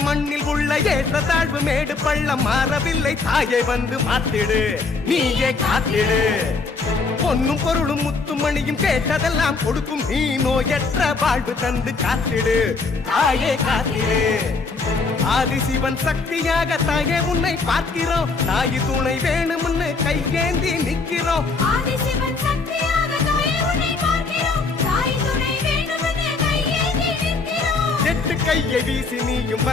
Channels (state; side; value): quieter; right; 4.2 dB